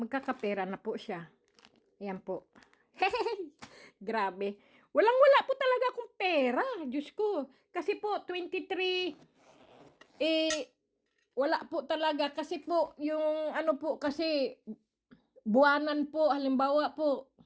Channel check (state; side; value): identical; both; correlation 1.00